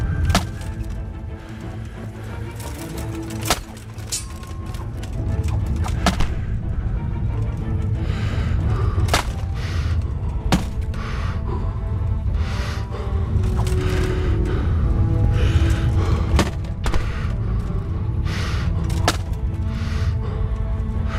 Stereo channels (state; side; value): identical; both; correlation 1.00